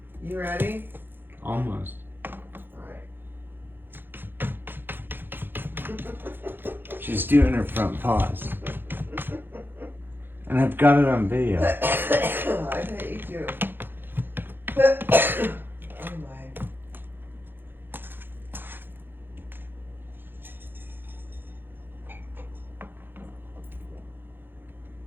You ready? Almost. Alright. She's doing her front paws. And I've got it on video. I bet you do. Oh my.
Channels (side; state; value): left; late; 0.099 ms